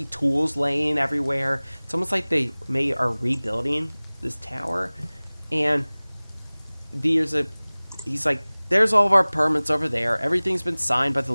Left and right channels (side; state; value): both; inverted; correlation -1.00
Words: tools laying everywhere. It's almost like they are rebuilding this tower. And he's like, there's all of our permits over there. Everything's been signed by the